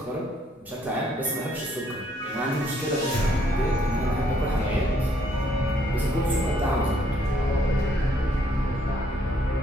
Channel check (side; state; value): both; normal; correlation 0.68